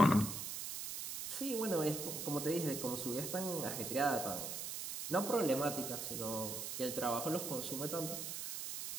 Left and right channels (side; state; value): right; noise; hiss, 5 dB below the sound